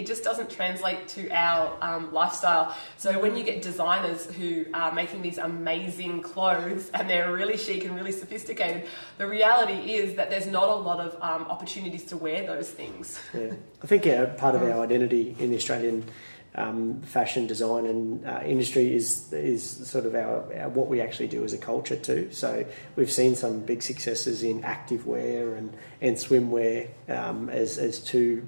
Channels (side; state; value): both; inverted; correlation -1.00